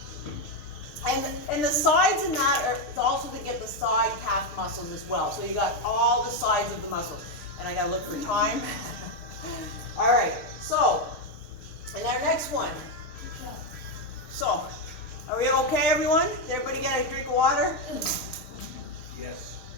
And the sides in that are also to get the side calf muscles as well. So you got all the sides of the muscles. And I gotta look for time. All right, so, and our next one. So, are we okay, everyone? Did everybody get a drink of water? Yes.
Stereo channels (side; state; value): right; late; 6.7 ms